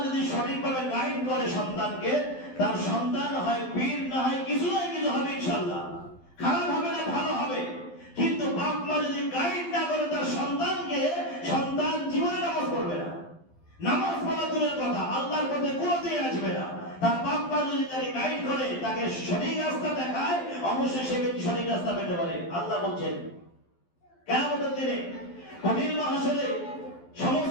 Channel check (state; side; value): late; right; 12 ms